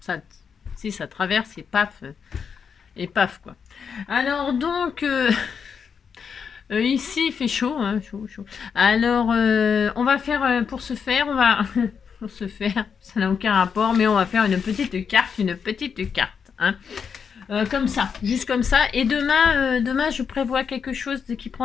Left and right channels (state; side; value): quieter; right; 6.5 dB